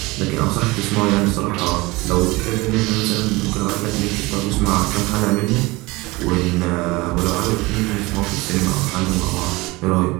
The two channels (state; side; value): quieter; left; 22.5 dB